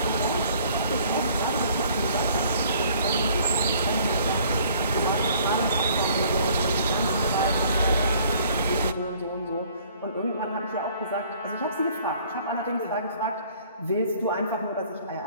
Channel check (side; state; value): both; inverted; correlation -0.57